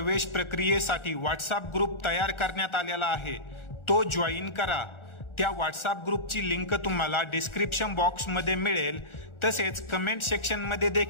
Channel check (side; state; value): right; late; 1.4 ms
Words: प्रक्रियेसाठी व्हॉट्सअप ग्रुप तयार करण्यात आलेला आहे तो जॉईन करा. त्या व्हॉट्सअप ग्रुपची लिंक तुम्हाला डिस्क्रिप्शन बॉक्समध्ये मिळेल. तसेच कमेंट सेक्शनमध्ये